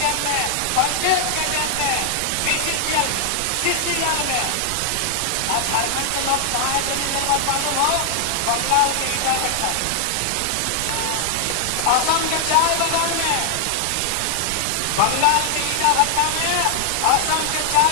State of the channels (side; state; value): both; different; correlation 0.00